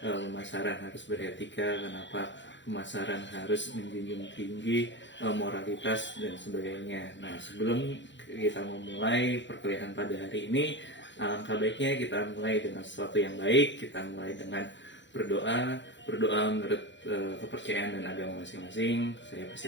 harus beretika? Kenapa pemasaran harus menjunjung tinggi moralitas dan sebagainya? Nah, sebelum kita memulai perkuliahan pada hari ini, alangkah baiknya kita mulai dengan sesuatu yang baik. Kita mulai dengan berdoa menurut kepercayaan dan agama masing-masing. Saya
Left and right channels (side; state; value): right; late; 0.53 ms